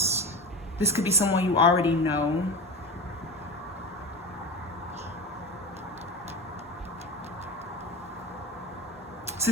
This could be someone you already know. This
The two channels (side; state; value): both; normal; correlation 0.28